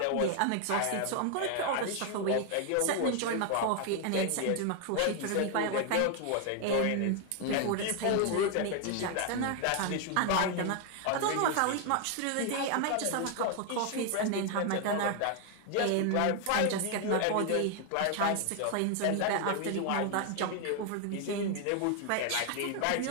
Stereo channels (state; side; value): different; both; correlation 0.00